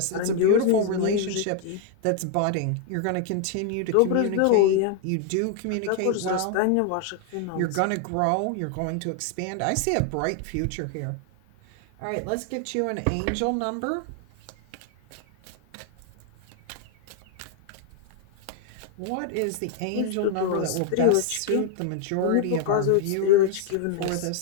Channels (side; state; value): both; different; correlation 0.00